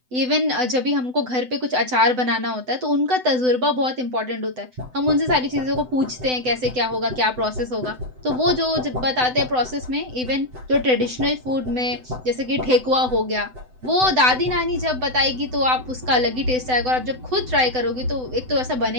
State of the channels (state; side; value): late; left; 7.9 ms